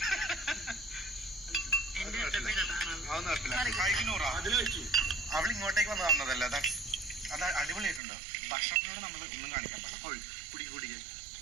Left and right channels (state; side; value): drops out; left; at 8.0 s